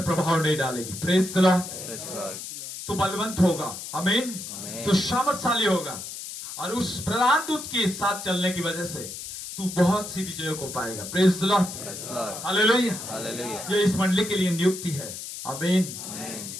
प्रभाव नहीं डालेगी। Praise the Lord. Praise the Lord. तू बलवंत होगा। आमीन। आमीन। तू सामर्थशाली होगा और उस प्रधान दूत के साथ चलने की वजह से तू बहुत सी विजयों को पाएगा। Praise the Lord. Praise the Lord. Hallelujah. Hallelujah. ये इस मंडली के लिए नियुक्ति है। आमीन। आमीन।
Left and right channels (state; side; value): noise; left; hiss, 9 dB below the sound